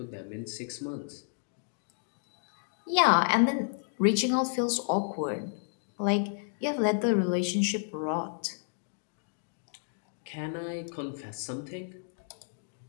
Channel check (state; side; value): silent; right; digital silence